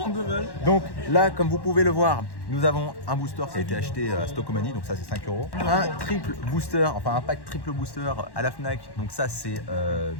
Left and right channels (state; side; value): late; right; 1.1 ms